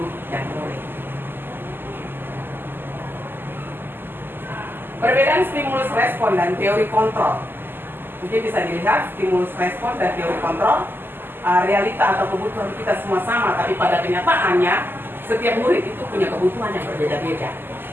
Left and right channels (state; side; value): late; left; 0.096 ms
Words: dan murid. Perbedaan stimulus respon dan teori kontrol. Mungkin bisa dilihat stimulus respon dan teori kontrol. Realita atau kebutuhan kita semua sama, tapi pada kenyataannya setiap murid itu punya kebutuhan yang berbeda-beda.